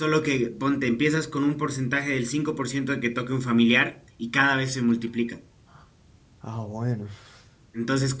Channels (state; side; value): identical; both; correlation 1.00